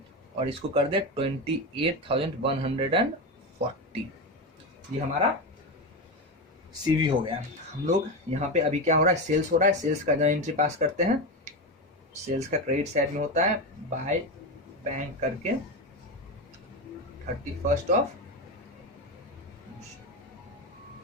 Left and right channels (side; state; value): both; normal; correlation 0.16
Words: और इसको कर दे 28,140, ये हमारा सीवी हो गया। हम लोग यहाँ पे अभी क्या हो रहा है, सेल्स हो रहा है। सेल्स का एंट्री पास करते हैं। सेल्स का क्रेडिट साइड में होता है बाय बैंक करके 31